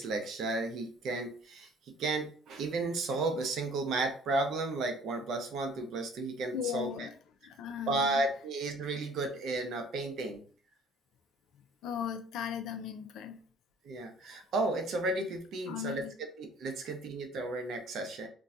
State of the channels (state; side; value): normal; both; correlation 0.52